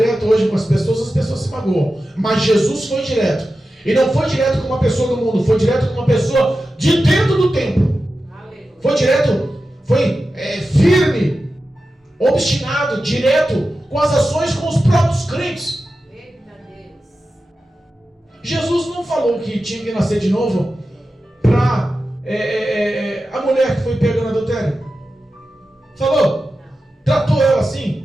hoje com as pessoas se magoam. Mas Jesus foi direto. E não foi direto com uma pessoa do mundo, foi direto com uma pessoa de dentro do templo. Foi direto, foi firme, obstinado, direto com as ações com os próprios crentes. Jesus não falou que tinha que nascer de novo para a mulher que foi pega no adultério. Falou? Tratou ela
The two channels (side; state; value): both; normal; correlation 0.92